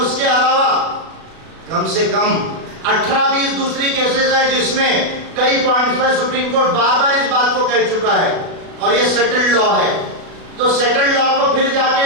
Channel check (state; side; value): late; left; 36 ms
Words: उसके अलावा कम से कम 18-20 दूसरी केसेस है जिसमें कई पॉइंट्स पर सुप्रीम कोर्ट बार-बार इस बात को कह चुका है, और ये सेटल्ड लॉ है। तो सेटल्ड लॉ को फिर जाके